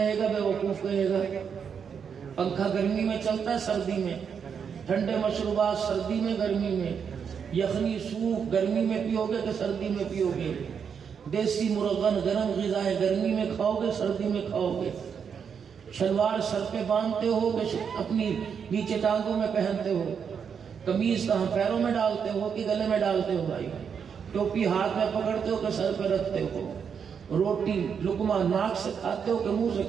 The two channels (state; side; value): quieter; left; 6.9 dB